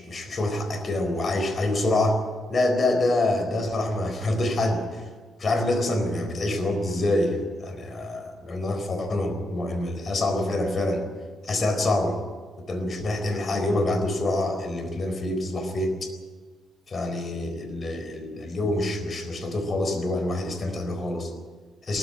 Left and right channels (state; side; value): normal; both; correlation 0.81